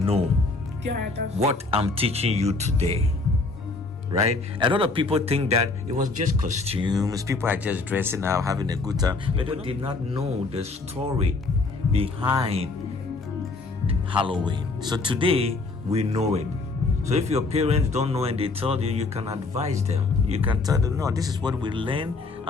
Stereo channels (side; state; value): right; quieter; 3.7 dB